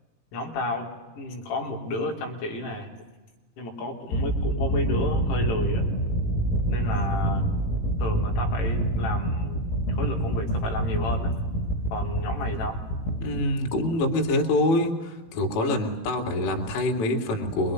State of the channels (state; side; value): late; right; 18 ms